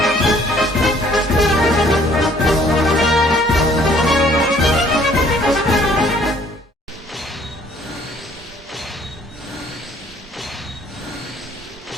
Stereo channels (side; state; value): both; normal; correlation 0.60